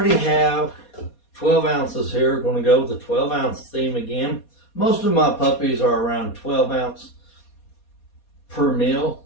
have 12 ounces here. We're gonna go with the 12 ounce theme again. Most of my puppies are around 12 ounce per meal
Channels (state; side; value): late; right; 4.2 ms